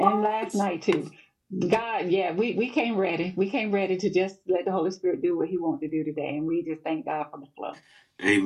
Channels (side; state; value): both; identical; correlation 1.00